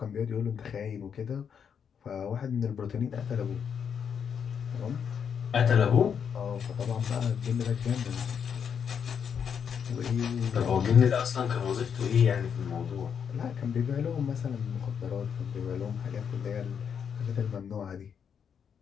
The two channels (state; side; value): quieter; right; 7.4 dB